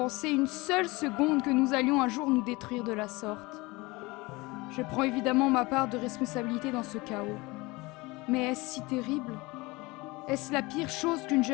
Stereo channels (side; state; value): right; quieter; 23.1 dB